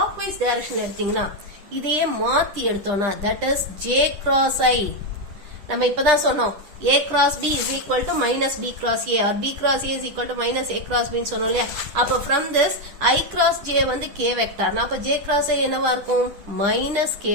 directionல எடுத்தீங்கன்னா இதையே மாத்தி எடுத்தோம்னா that is j cross I. நம்ம இப்பதான் சொன்னோம் a cross b is equal to minus b cross a or b cross a is equal to minus a cross b ன்னு சொன்னோம் இல்லையா? அப்ப from this I cross j வந்து k வெக்டார், அப்ப j cross I என்னவா இருக்கும், minus k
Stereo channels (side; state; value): left; late; 10 ms